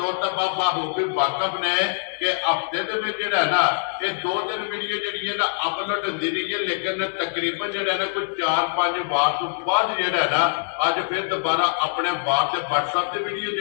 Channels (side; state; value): right; silent; digital silence